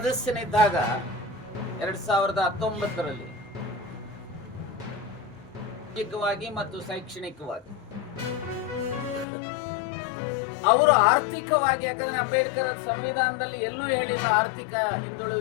2019ರಲ್ಲಿ ಸಾಮಾಜಿಕವಾಗಿ ಮತ್ತು ಶೈಕ್ಷಣಿಕವಾಗಿ ಅವರು ಆರ್ಥಿಕವಾಗಿ, ಯಾಕಂದ್ರೆ ಅಂಬೇಡ್ಕರ್ ಸಂವಿಧಾನದಲ್ಲಿ ಎಲ್ಲೂ ಹೇಳಿಲ್ಲ ಆರ್ಥಿಕ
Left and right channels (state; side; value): drops out; right; at 9.2 s